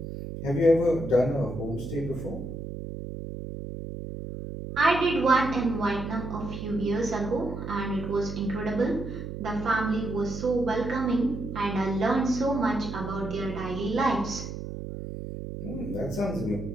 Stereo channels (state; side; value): noise; right; hum, 7 dB below the sound